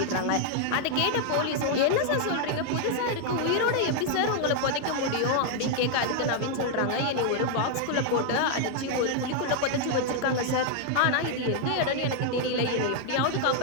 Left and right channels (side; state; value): both; different; correlation 0.00